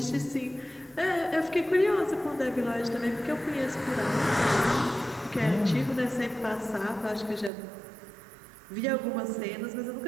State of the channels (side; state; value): left; drops out; at 7.5 s